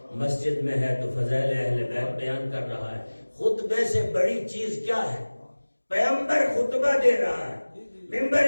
مسجد میں ہے تو فضائل اہل بیت بیان کر رہا ہے۔ خطبے سے بڑی چیز کیا ہے؟ پیغمبر خطبہ دے رہا ہے،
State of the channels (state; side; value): inverted; both; correlation -1.00